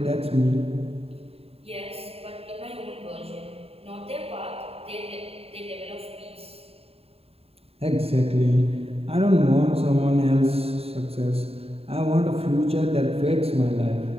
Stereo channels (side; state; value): left; late; 0.29 ms